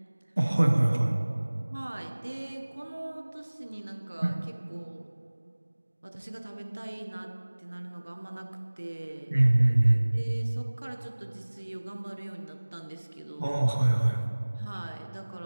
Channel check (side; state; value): both; inverted; correlation -1.00